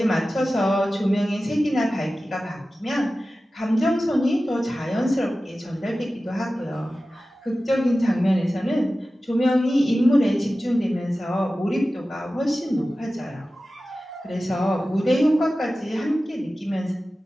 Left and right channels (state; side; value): normal; both; correlation 0.95